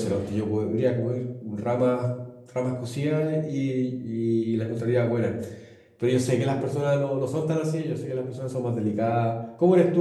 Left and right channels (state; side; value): identical; both; correlation 1.00